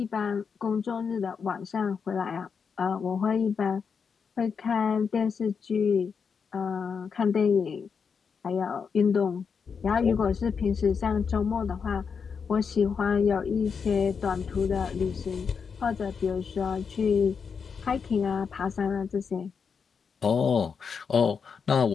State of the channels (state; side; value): quieter; right; 6.1 dB